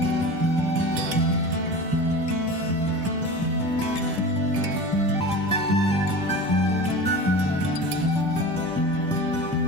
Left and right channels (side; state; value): left; noise; hum, 23 dB below the sound